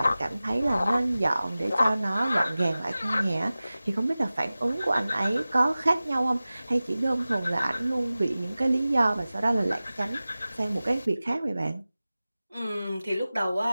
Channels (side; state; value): both; inverted; correlation -0.97